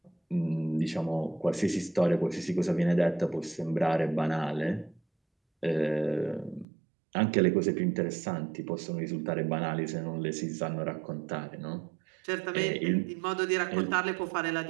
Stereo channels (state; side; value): drops out; left; at 6.7 s